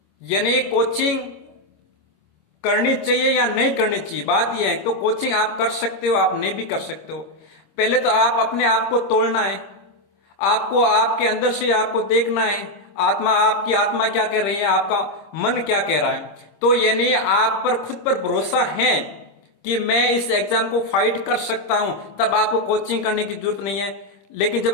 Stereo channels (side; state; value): right; late; 25 ms